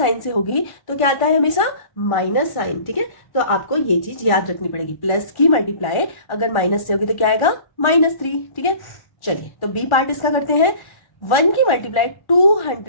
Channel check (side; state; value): right; late; 1.4 ms